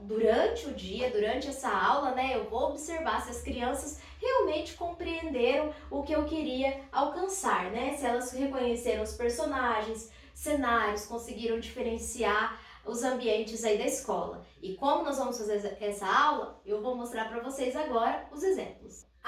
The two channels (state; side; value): identical; both; correlation 1.00